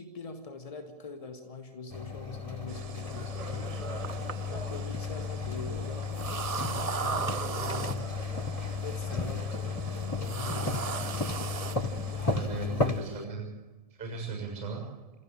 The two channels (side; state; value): right; late; 1.7 ms